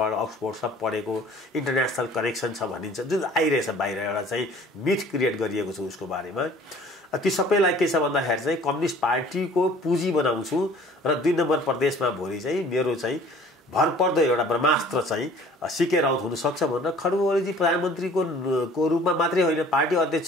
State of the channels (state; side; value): normal; both; correlation 0.51